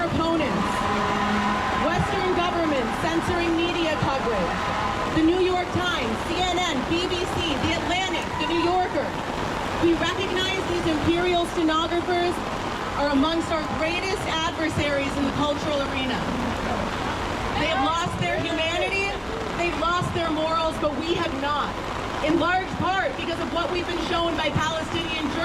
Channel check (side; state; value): both; identical; correlation 1.00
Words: opponents. Western governments censoring media coverage. The New York Times, CNN, BBC, The Atlantic, The New Yorker. We recognize these imperial stenographers are amongst our greatest adversaries in the cultural arena. They have lost their humanity, they've lost their morals, but we have not. In large part because of what we've been shown by Palestinian